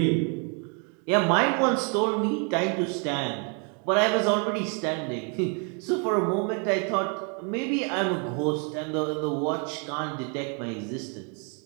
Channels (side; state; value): left; quieter; 37.8 dB